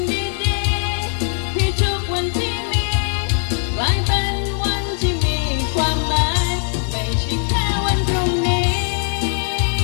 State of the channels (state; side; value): silent; right; digital silence